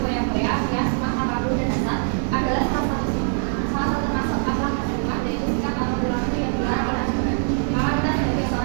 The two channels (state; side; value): silent; left; digital silence